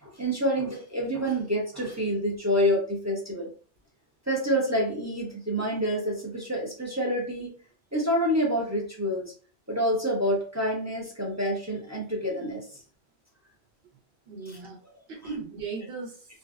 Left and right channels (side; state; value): both; normal; correlation -0.08